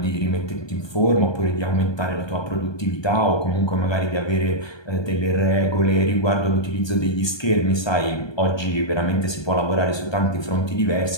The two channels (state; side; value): late; right; 1.2 ms